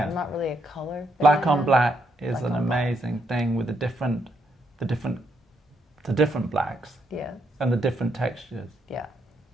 I'm not really a color Black fan. on black is Black an on amazing thing with the different blacks Yeah, and the different textures. yeah.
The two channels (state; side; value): normal; both; correlation 0.77